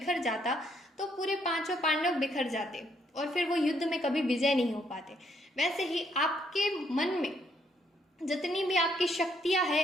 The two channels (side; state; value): both; normal; correlation 0.72